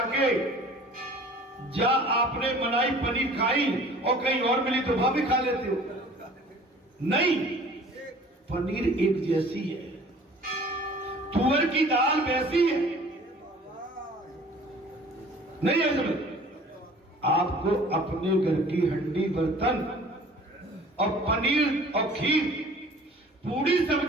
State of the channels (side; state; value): both; normal; correlation 0.48